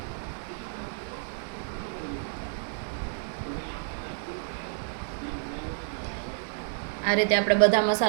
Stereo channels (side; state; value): left; silent; digital silence